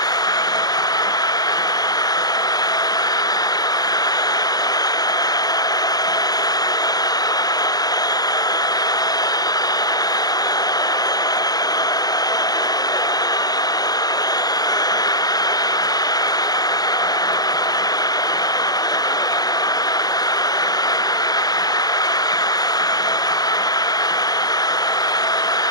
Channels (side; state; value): right; late; 0.19 ms